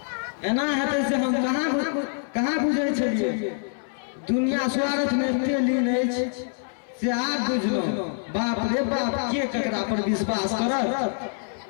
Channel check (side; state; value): right; silent; 61 dB below the other